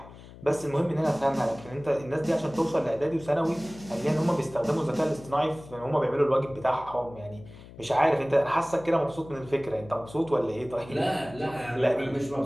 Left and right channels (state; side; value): noise; left; hum, 18 dB below the sound